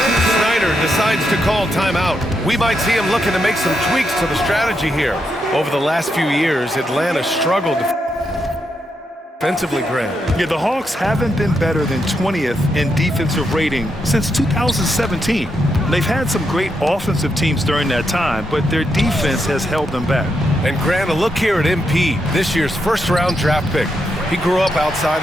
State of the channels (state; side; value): normal; both; correlation 0.82